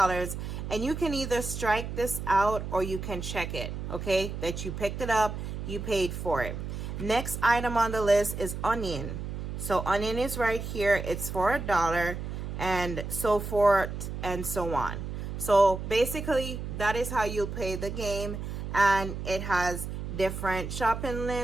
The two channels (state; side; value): noise; right; hum, 6 dB below the sound